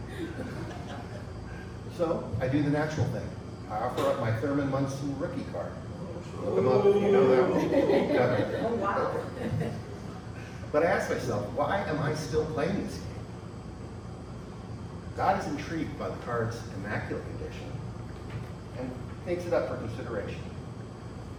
So I do the natural thing. I offer up my Thurman Munson rookie card. Look them up if you know that one. Oh, wow. But I ask myself, why am I still playing this game? God is intrigued by the card's immaculate condition and takes it up for consideration.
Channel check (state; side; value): identical; both; correlation 1.00